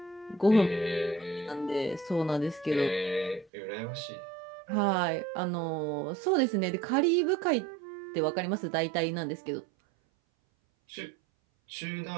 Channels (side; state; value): left; drops out; at 3.5 s